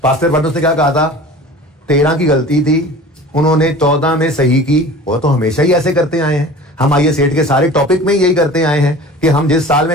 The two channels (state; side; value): normal; both; correlation 0.40